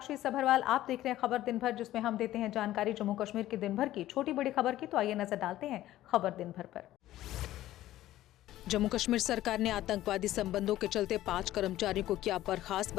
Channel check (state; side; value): quieter; right; 14.4 dB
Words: सभरवाल। आप देख रहे हैं खबर दिन भर, जिसमें हम देते हैं जानकारी जम्मू कश्मीर की दिन भर की छोटी बड़ी खबर की। तो आइए नजर डालते हैं खबर दिन भर पर। जम्मू कश्मीर सरकार ने आतंकवादी संबंधों के चलते 5 कर्मचारियों को किया